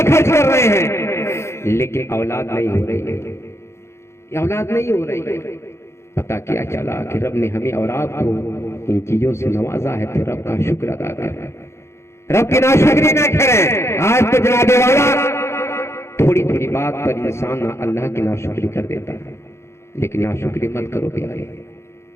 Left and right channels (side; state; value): right; late; 0.13 ms